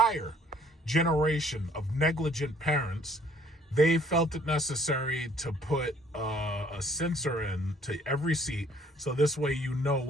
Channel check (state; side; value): normal; both; correlation 0.60